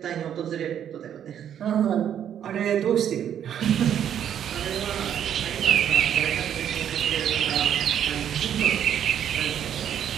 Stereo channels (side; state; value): left; quieter; 9.5 dB